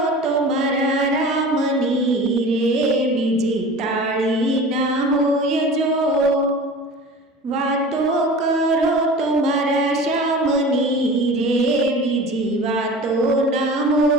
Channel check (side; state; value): both; normal; correlation 0.38